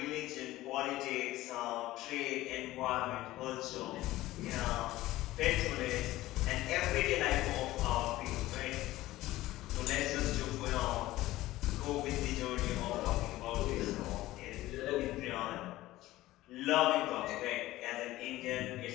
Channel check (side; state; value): right; quieter; 16.7 dB